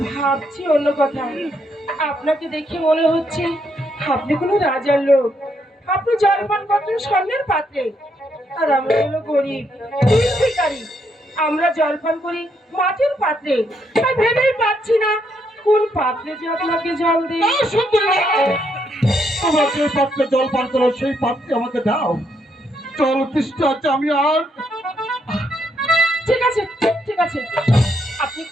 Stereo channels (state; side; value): normal; both; correlation 0.75